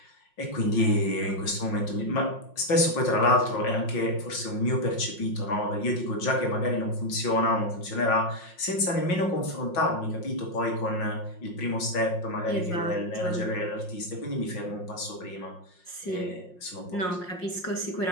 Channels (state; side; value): late; right; 5.6 ms